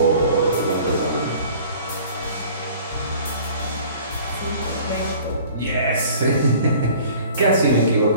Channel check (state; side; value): inverted; both; correlation -0.48